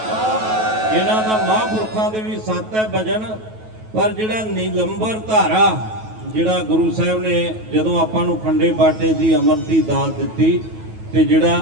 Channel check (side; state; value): left; late; 9.3 ms